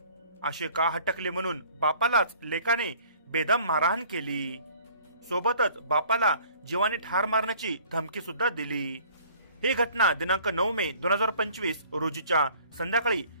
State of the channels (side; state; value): both; inverted; correlation -0.53